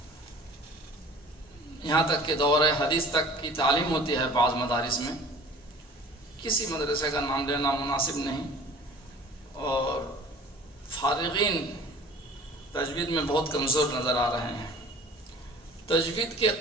یہاں تک کہ دور حدیث تک کی تعلیم ہوتی ہے بعض مدارس میں، کسی مدرسے کا نام لینا مناسب نہیں، اور فارغین تجوید میں بہت کمزور نظر آ رہے ہیں۔ تجوید کے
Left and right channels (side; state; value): both; normal; correlation 0.46